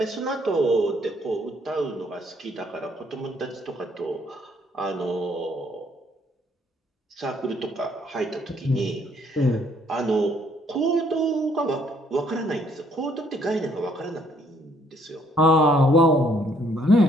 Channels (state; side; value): normal; both; correlation 0.66